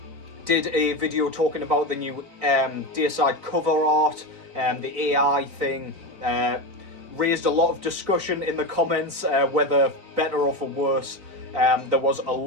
did a video talking about the new Deicide cover art, the AI thing. Raised a lot of discussion in the comments, whether better or for worse. There was a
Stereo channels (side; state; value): left; late; 3.9 ms